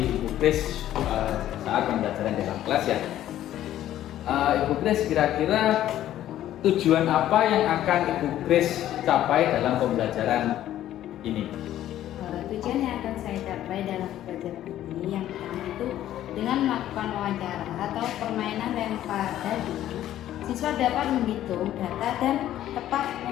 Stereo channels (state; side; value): quieter; right; 12.6 dB